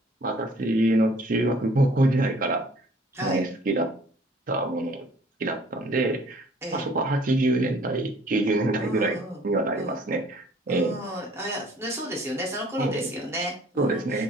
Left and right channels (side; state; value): both; normal; correlation 0.55